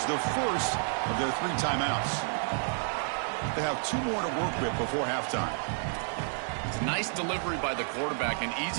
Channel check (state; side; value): silent; left; 57 dB below the other